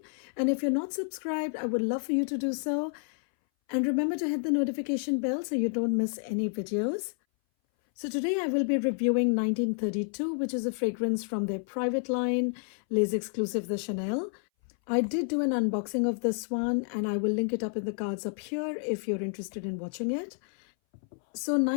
And if you're not subscribed, I would love for you to do so. And remember to hit the notification bell so you don't miss any videos. So today I will be reviewing 1932, which is a fragrance from their private line, Les Exclusifs de Chanel. I did do an unboxing of this one and I will link it up in the cards up here if you're interested in watching it. So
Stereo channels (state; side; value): silent; right; 58 dB below the other